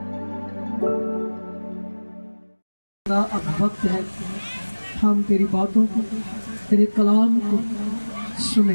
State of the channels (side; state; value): both; inverted; correlation -1.00